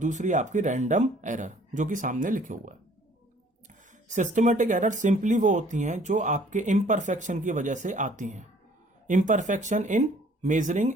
आपकी रैंडम एरर, जो कि सामने लिखे हुआ है। सिस्टमेटिक एरर सिंपली वो होती हैं जो आपके इम्परफेक्शन की वजह से आती हैं। Imperfection in measuring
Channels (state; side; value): normal; both; correlation 0.57